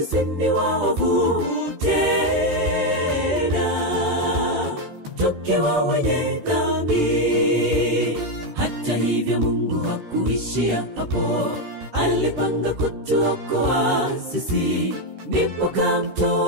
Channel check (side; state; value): left; late; 13 ms